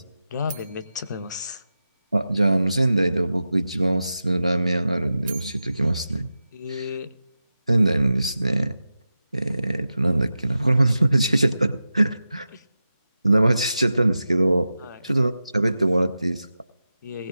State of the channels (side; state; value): both; inverted; correlation -0.92